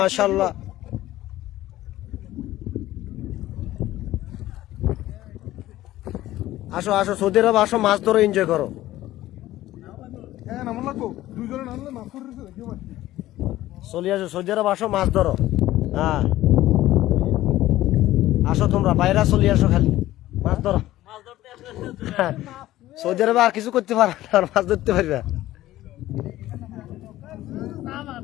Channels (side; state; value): right; quieter; 15.2 dB